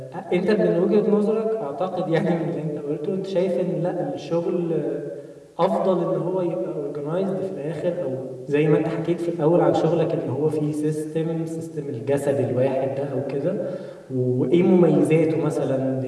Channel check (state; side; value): identical; both; correlation 1.00